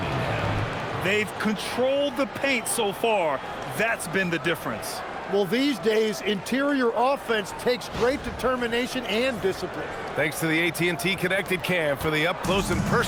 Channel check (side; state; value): both; identical; correlation 1.00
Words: They've controlled the paint so far. That's been the difference. Well, these days, interior offense takes great determination and discipline. Thanks to the AT&T Connected Cam for the up-close and